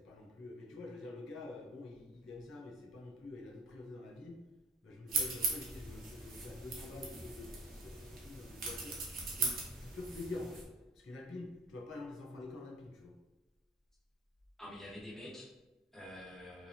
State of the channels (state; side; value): normal; both; correlation 0.52